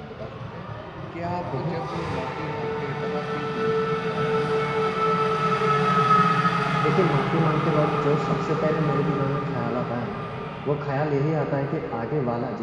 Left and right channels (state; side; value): identical; both; correlation 1.00